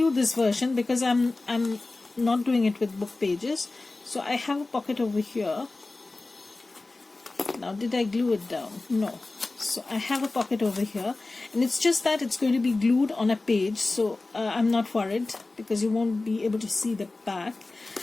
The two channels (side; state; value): right; quieter; 3.2 dB